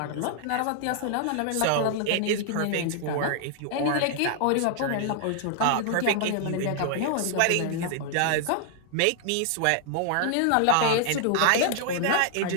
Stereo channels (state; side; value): different; both; correlation -0.01